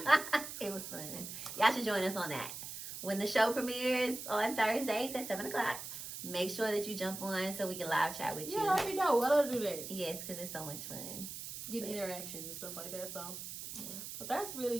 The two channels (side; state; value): right; noise; hiss, 8 dB below the sound